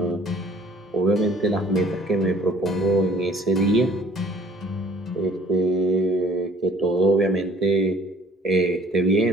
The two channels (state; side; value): normal; both; correlation 0.55